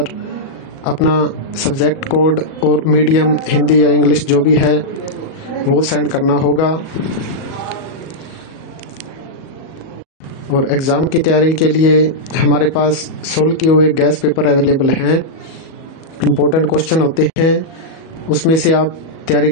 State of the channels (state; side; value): late; right; 37 ms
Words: अपना सब्जेक्ट कोड और मीडियम हिंदी या इंग्लिश जो भी है वो सेंड करना होगा। और एग्ज़ाम की तैयारी के लिए हमारे पास सोल्व किए हुए गैस पेपर अवेलेबल हैं। इम्पोर्टेंट क्वेश्चन होते हैं, उसमें से आप तैयारी